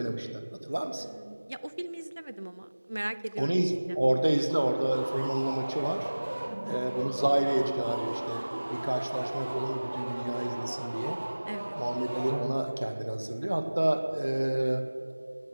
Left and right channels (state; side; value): inverted; both; correlation -1.00